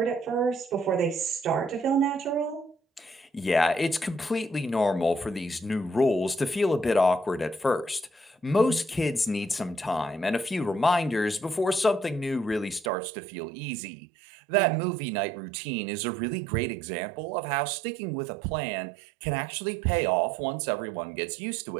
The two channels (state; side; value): drops out; left; at 12.9 s